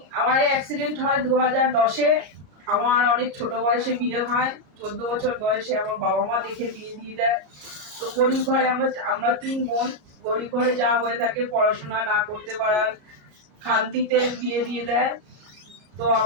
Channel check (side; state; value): left; late; 33 ms